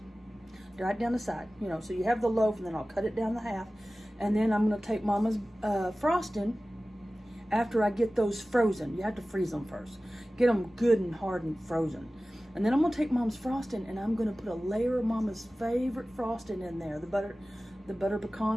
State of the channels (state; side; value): normal; both; correlation 0.96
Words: right down the side, you know, so you have the loaf, and then I'll cut it down the half, and then I'm going to take Mama's frosting after I get those frozen. You have to freeze them first. Get them good and hard and frozen. And then I'm going to take Mom's frosting, and I'm going to put a layer of Mama's favorite frosting in there, the butter